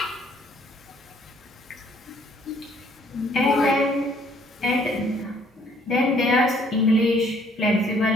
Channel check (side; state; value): both; normal; correlation 0.63